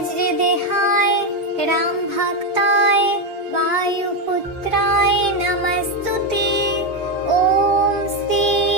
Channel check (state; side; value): normal; both; correlation 0.08